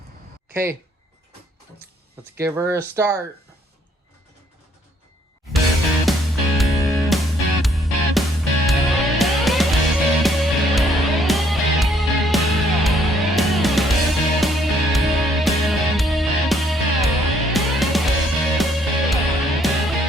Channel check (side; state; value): both; normal; correlation 0.66